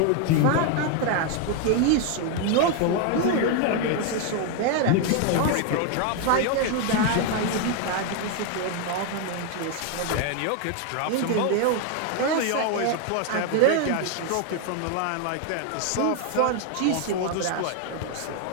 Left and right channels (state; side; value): different; both; correlation 0.01